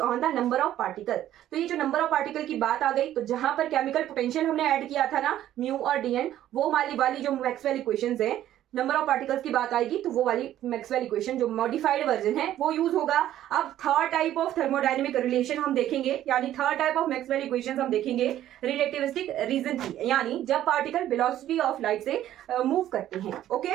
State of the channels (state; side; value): quieter; left; 12.5 dB